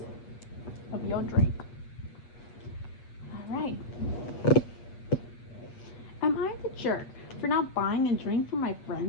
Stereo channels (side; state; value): right; late; 8.3 ms